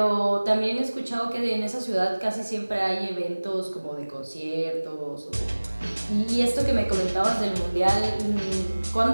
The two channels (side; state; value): both; inverted; correlation -1.00